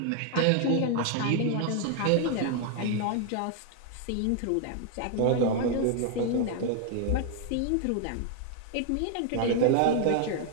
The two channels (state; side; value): different; both; correlation 0.00